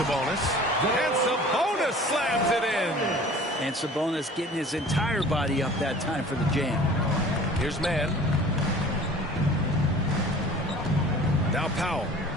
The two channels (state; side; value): normal; both; correlation 0.46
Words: And Sabonis slams it in. And Sabonis getting his entire body up that time for the jam. Here's Mann. Now Powell.